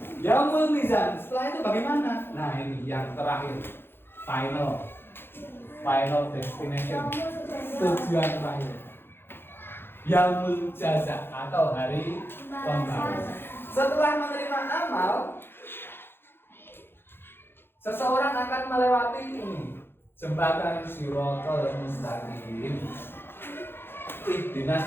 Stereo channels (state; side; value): late; right; 0.11 ms